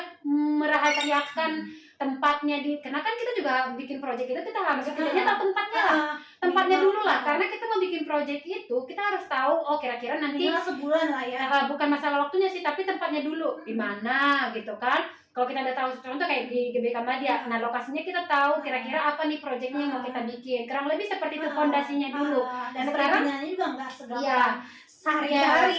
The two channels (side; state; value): both; identical; correlation 1.00